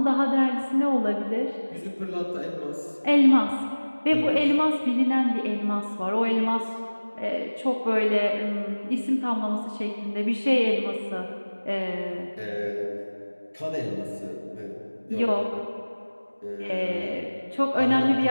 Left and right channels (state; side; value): inverted; both; correlation -1.00